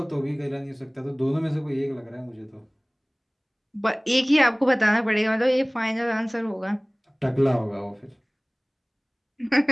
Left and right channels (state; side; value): identical; both; correlation 1.00